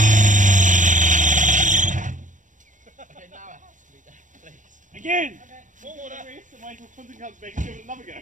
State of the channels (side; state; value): left; late; 0.37 ms